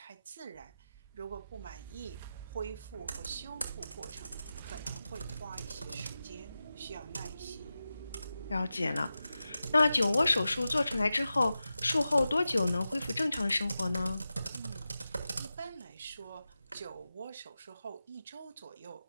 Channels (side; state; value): both; inverted; correlation -0.92